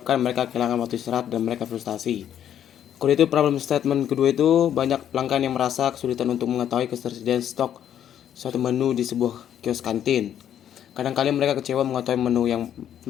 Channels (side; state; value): right; quieter; 10.1 dB